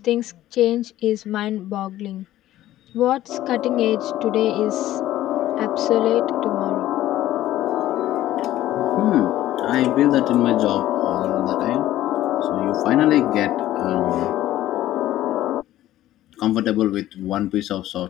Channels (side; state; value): right; quieter; 14.1 dB